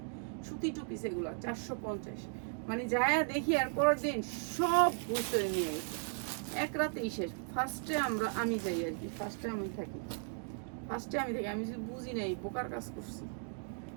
সুতি টু পিস এগুলা 450। মানে যায় দেখি আর পরের দিন সব বুঝতে নিয়ে গেছে, এক রাতেই শেষ। আমি যাই আর কি, ফার্স্টে আমি থাকি, আমি যদি বুঝি নাই বোকার কাজ করছি,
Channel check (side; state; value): left; silent; 54 dB below the other